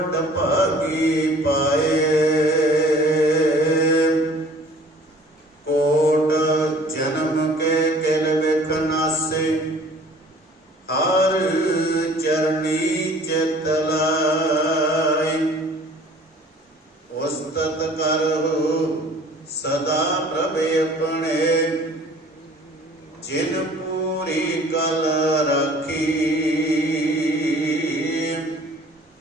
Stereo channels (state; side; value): normal; both; correlation 0.50